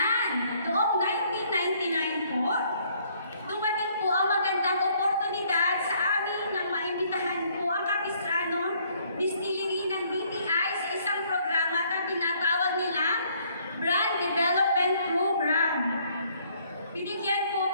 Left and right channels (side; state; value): both; inverted; correlation -0.64